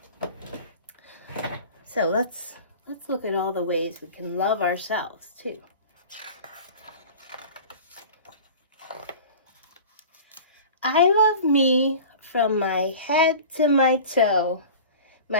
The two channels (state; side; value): inverted; both; correlation -0.38